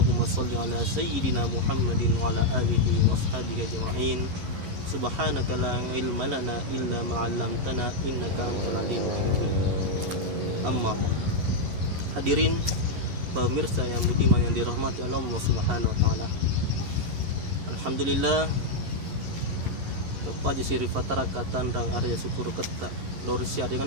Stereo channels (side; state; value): left; late; 11 ms